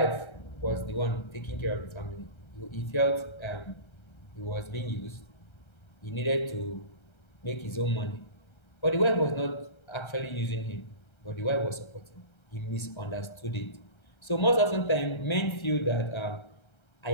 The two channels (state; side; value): late; right; 1.3 ms